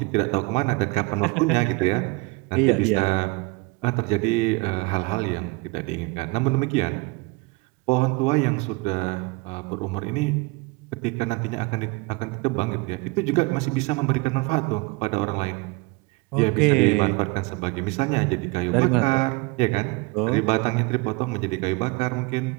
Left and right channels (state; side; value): quieter; left; 26.4 dB